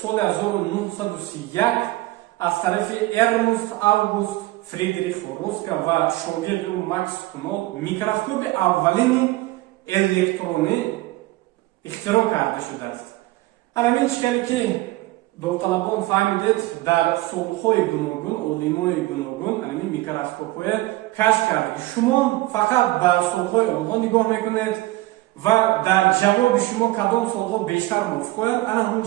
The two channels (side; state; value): left; quieter; 18.6 dB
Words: соли 1931 аз тарафи Эрнст Август Фридрих Роска ва шогирди Макс Кунол микроскоби аввалини электронӣ ихтироъ карда шудааст. Ҳамин чӣ хеле ки довталабон фаҳмидед, дар солҳои гуногун олимони гуногун ҳамин микроскопҳое кашф карда. Шумо фақат ба солҳои онҳо нигоҳ мекунед, ва дар ҷавоби шумо кадом суолҳо бештар мувофиқояд, ана ҳамн